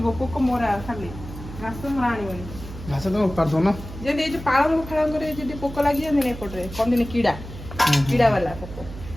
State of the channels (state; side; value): noise; right; hum, 12 dB below the sound